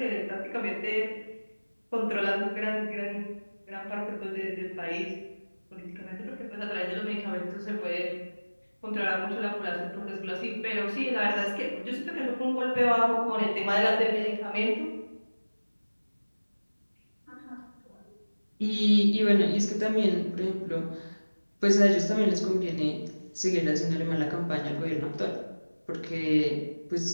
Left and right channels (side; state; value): both; inverted; correlation -1.00